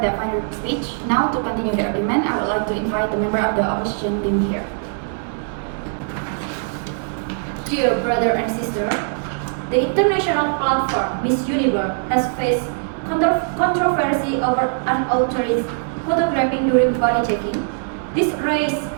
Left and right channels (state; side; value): silent; left; digital silence